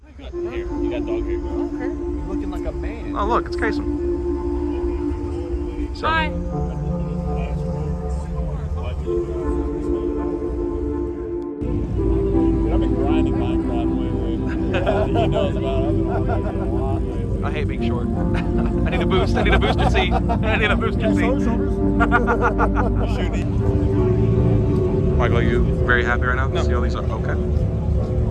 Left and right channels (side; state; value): both; identical; correlation 1.00